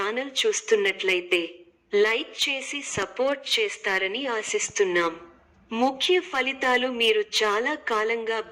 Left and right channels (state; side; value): identical; both; correlation 1.00